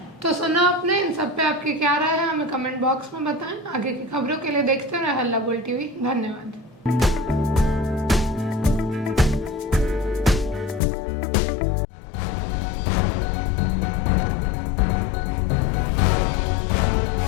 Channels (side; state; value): right; drops out; at 10.8 s